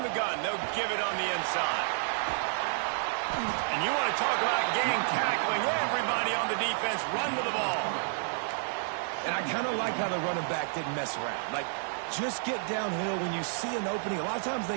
the gun, they'll give it on the inside. And you want to talk about gang tackling. Everybody on the defense run with the ball. And I kind of like how the running back didn't mess around. Like, just get downhill when you see an opening. A lot of times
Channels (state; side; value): silent; left; 58 dB below the other